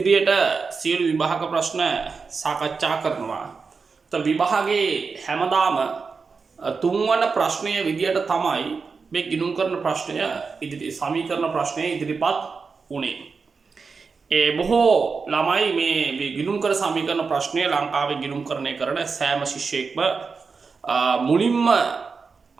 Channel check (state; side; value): quieter; left; 4.9 dB